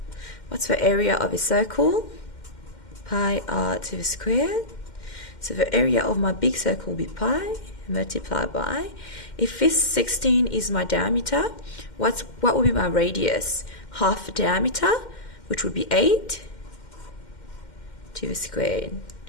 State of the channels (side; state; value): right; late; 2.1 ms